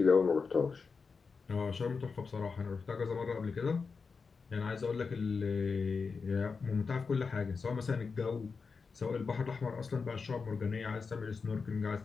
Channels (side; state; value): right; quieter; 5.0 dB